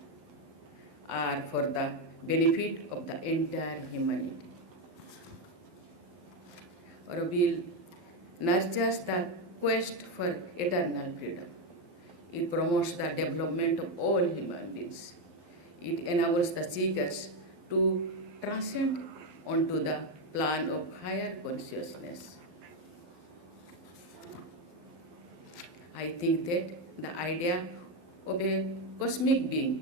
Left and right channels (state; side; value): late; left; 12 ms